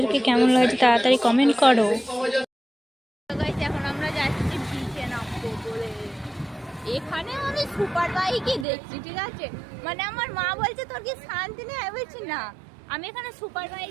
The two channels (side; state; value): left; drops out; at 8.7 s